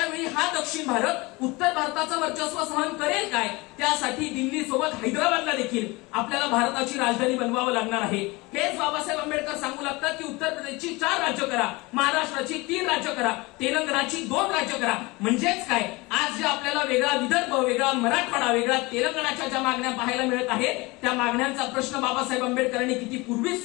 वेळी हा दक्षिण भारत उत्तर भारताचं वर्चस्व सहन करेल काय? त्यासाठी दिल्ली सोबत हैदराबादला देखील आपल्याला भारताची राजधानी बनवावं लागणार आहे. हेच बाबासाहेब आंबेडकर सांगू लागतात की उत्तर प्रदेशची 4 राज्य करा, महाराष्ट्राची 3 राज्य करा, तेलंगणाची 2 राज्य करा. म्हणजेच काय, आज जे आपल्याला वेगळा विदर्भ, वेगळा मराठवाडा, वेगळा तेलंगणाच्या ज्या मागण्या पाहायला मिळत आहेत त्या मागण्यांचा प्रश्न बाबासाहेब आंबेडकरांनी किती पूर्वीच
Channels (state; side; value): quieter; right; 23.7 dB